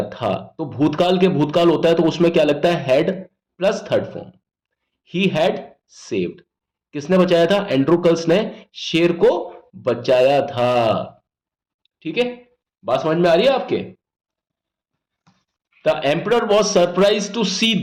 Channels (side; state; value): both; identical; correlation 1.00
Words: था। तो भूतकाल के भूतकाल होता है तो उसमें क्या लगता है? Had plus third form. He had saved, किसने बचाया था? एंड्रोकल्स ने शेर को बचाया था। ठीक है, बात समझ में आ रही है आपके? The emperor was surprise to see